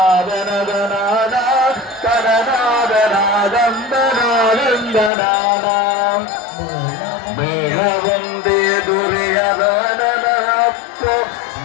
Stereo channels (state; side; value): drops out; right; at 5.1 s